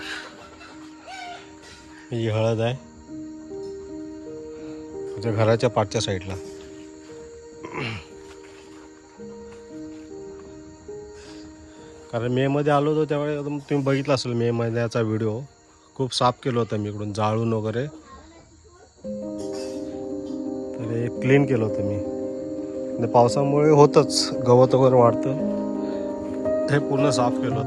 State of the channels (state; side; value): identical; both; correlation 1.00